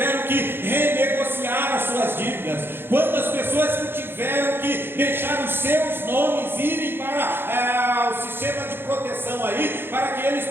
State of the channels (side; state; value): left; late; 0.10 ms